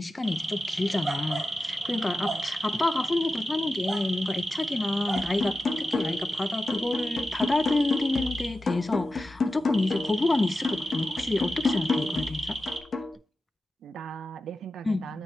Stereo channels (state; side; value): normal; both; correlation 0.92